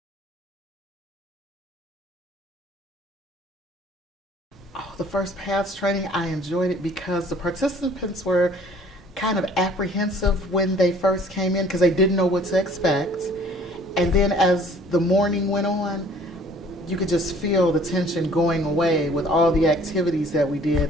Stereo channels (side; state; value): both; normal; correlation 0.54